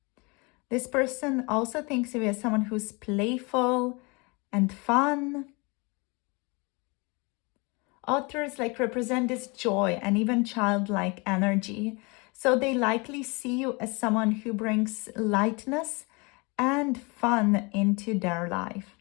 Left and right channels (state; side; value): quieter; right; 28.5 dB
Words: This person also thinks of you as someone who's playful and fun. Otters represent this joy and even childlike energy. So they likely see you as someone who brings lightness and fun into their life.